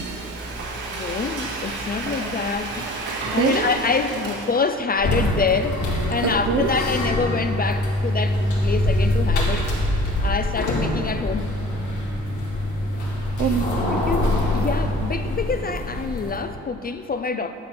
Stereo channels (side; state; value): both; normal; correlation 0.45